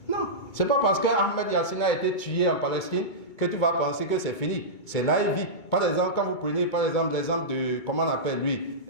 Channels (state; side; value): late; right; 2.2 ms